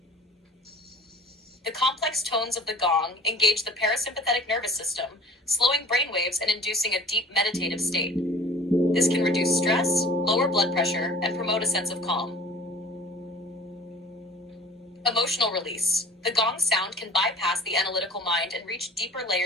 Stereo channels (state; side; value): normal; both; correlation 0.45